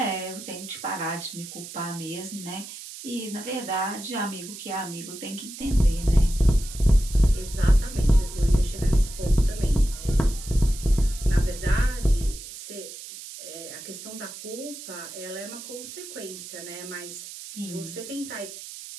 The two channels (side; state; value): right; noise; hiss, 12 dB below the sound